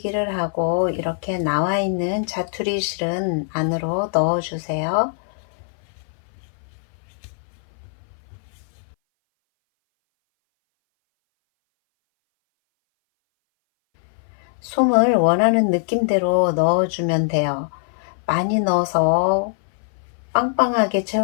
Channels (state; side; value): silent; right; 59 dB below the other